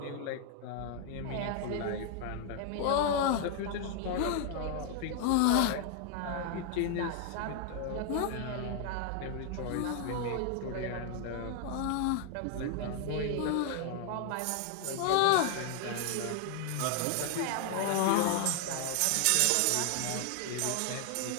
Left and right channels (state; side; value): different; both; correlation 0.00